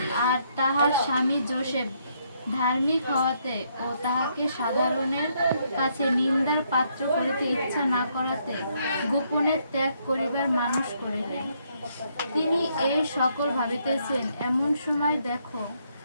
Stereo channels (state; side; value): inverted; both; correlation -0.72